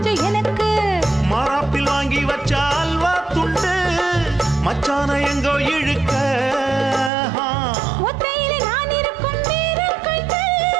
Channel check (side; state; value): left; drops out; at 7.1 s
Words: எனக்கு மாறாப்பில் வாங்கி வச்ச அல்வா துண்டு மச்சான எங்கோ இழுக்க ஒத்தையிலே நான் இருக்கும் நேரம் கண்டு